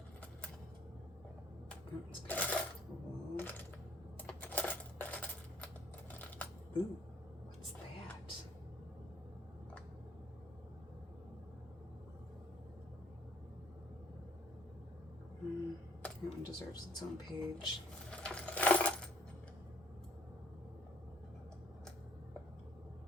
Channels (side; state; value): both; normal; correlation 0.61